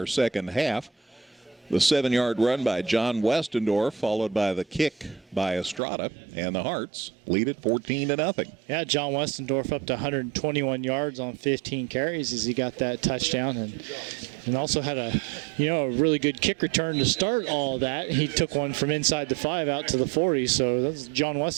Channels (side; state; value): left; drops out; at 5.8 s